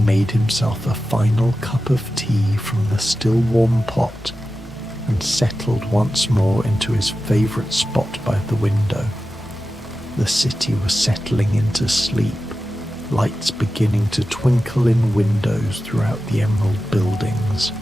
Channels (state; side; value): normal; both; correlation 0.93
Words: himself a final cup of tea from the still warm pot and settled once more into his favourite spot by the window. The city was settling into sleep, lights beginning to twinkle in windows throughout the emerald buildings.